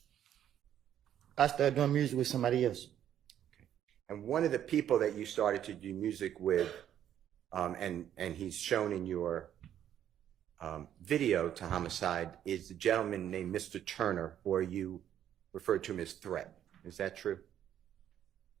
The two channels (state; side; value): quieter; left; 10.5 dB